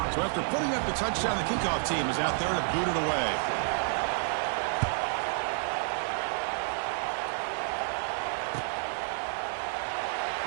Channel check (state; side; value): silent; left; digital silence